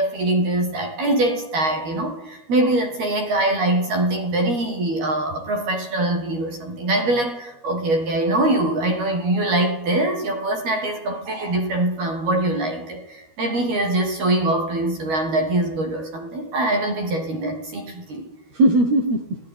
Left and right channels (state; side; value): late; left; 13 ms